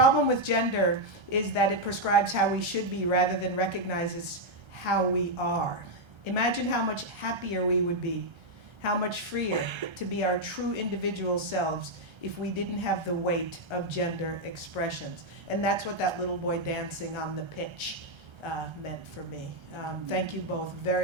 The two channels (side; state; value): left; late; 1.3 ms